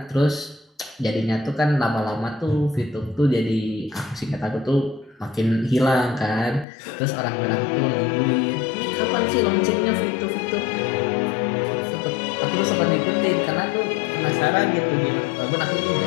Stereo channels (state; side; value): drops out; right; at 6.7 s